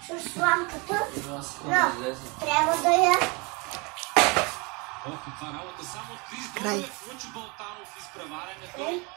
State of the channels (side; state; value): left; quieter; 29.0 dB